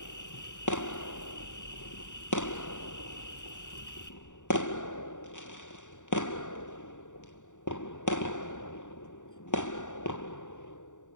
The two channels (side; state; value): right; late; 0.86 ms